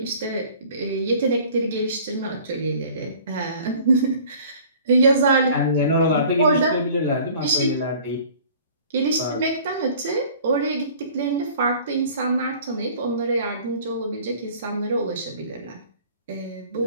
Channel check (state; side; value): inverted; both; correlation -0.49